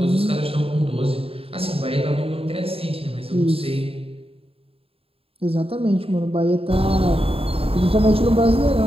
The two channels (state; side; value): late; left; 0.27 ms